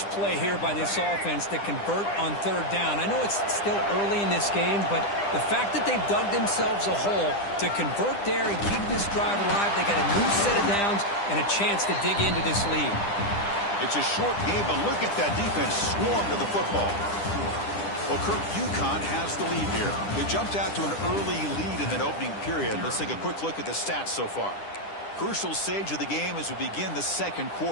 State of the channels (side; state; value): right; late; 10 ms